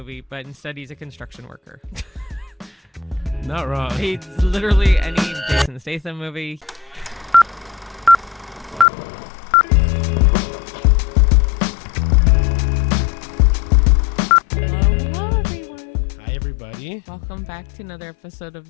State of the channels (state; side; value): drops out; right; at 8.8 s